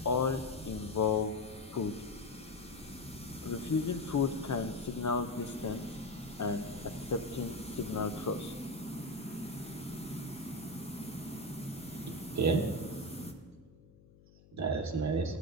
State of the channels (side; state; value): left; noise; hum, 24 dB below the sound